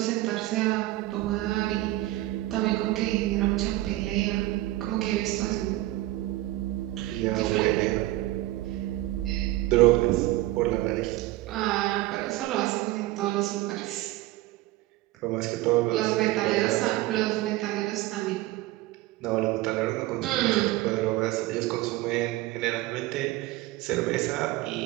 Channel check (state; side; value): quieter; left; 17.1 dB